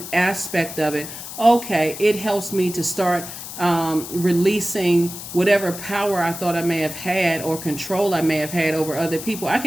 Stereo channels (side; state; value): left; noise; hiss, 10 dB below the sound